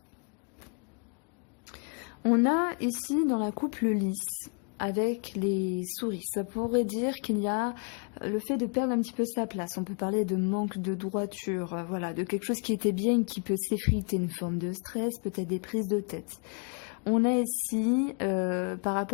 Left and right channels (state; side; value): quieter; right; 38.0 dB